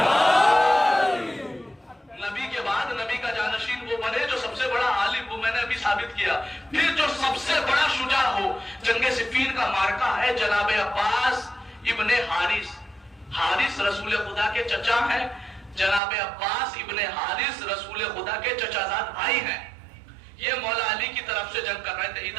نبی کے بعد نبی کا جانشین وہ بنے جو سب سے بڑا عالم, وہ میں نے ابھی ثابت کیا. پھر جو سب سے بڑا شجاع ہو, جنگ صفین کا مارکہ ہے جناب عباس ابن حارث. حارث رسول خدا کے چچا ہیں, جناب عباس ابن حارث رسول خدا کے چچا زاد بھائی ہیں. یہ مولا علی کی طرف سے جنگ کر رہے تھے,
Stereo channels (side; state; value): left; drops out; at 16.0 s